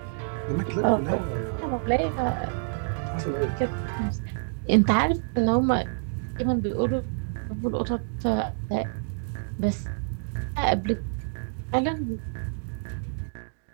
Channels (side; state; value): left; silent; digital silence